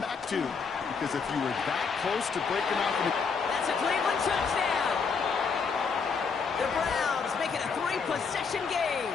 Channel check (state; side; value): quieter; right; 5.4 dB